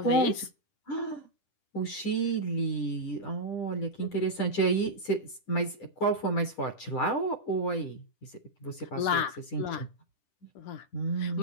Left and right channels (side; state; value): right; late; 10 ms